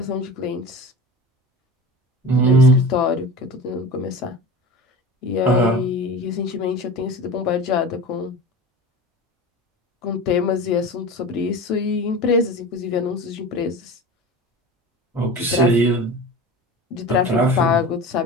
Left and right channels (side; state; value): both; normal; correlation 0.32